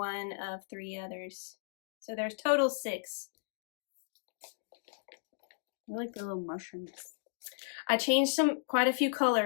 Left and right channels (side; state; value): right; silent; digital silence